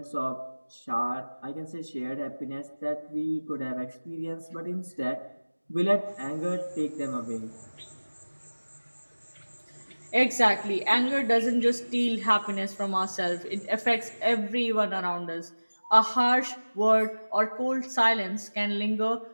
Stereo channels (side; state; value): both; inverted; correlation -1.00